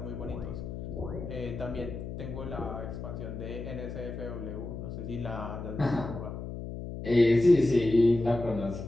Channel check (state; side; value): noise; left; hum, 7 dB below the sound